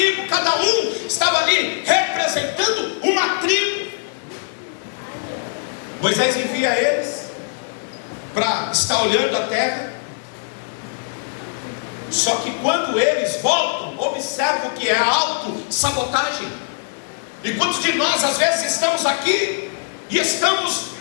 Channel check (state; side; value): silent; right; digital silence